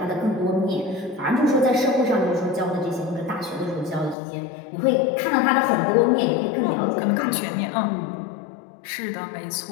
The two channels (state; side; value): drops out; right; at 4.2 s